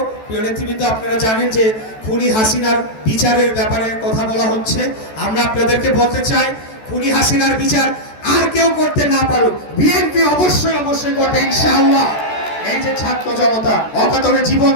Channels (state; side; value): late; right; 14 ms